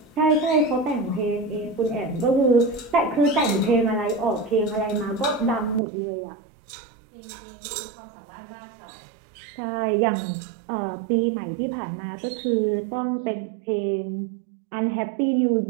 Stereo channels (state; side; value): drops out; left; at 5.8 s